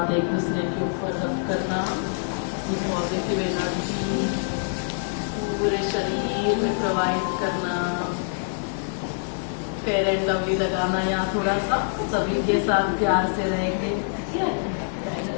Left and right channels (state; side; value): silent; right; 62 dB below the other